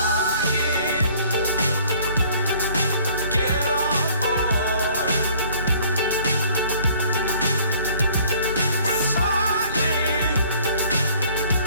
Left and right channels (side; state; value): both; inverted; correlation -0.55